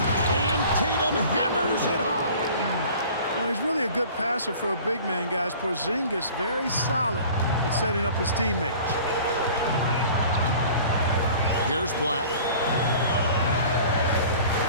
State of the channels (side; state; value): both; inverted; correlation -0.45